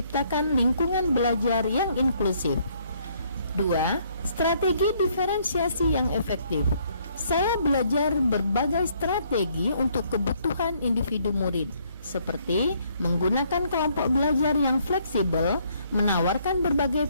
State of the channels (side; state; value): both; inverted; correlation -0.67